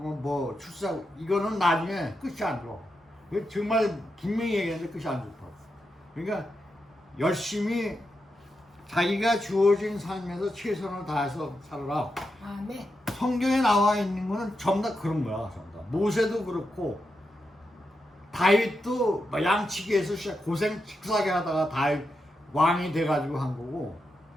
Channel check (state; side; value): normal; both; correlation 0.86